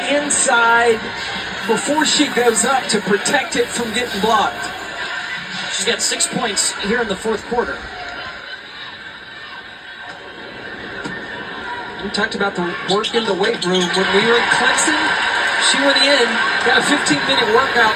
inside before she goes up to protect it from getting blocked. She's got 6 points here in the fourth quarter. We talked about the work in the weight room. When we were in Clemson, she went in, got a 15-minute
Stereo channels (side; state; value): both; identical; correlation 1.00